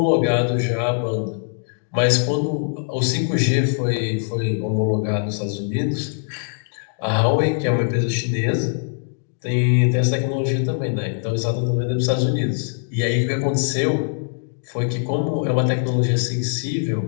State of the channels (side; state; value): right; silent; digital silence